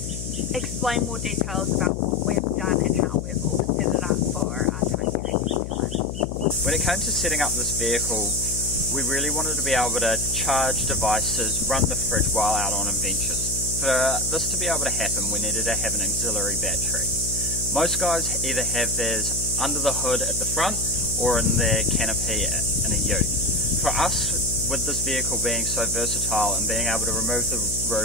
explain more details about what we've done and how we've all set it up for our time here in New Zealand. When it came to setting up this vehicle, we really wanted to be able to charge devices, run the fridge while out on adventures. For this to be able to happen, we needed to have an auxiliary battery. Most guys either have theirs under the hood at the front or in their canopy in a ute. For us, with this vehicle being so versatile and being able to remove the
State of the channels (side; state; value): left; noise; hum, 7 dB below the sound